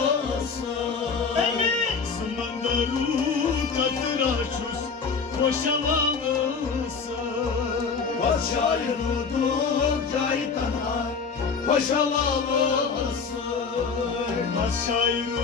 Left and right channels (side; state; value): right; quieter; 5.4 dB